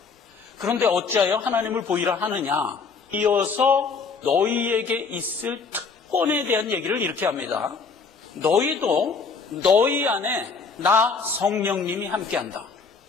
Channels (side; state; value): right; quieter; 5.0 dB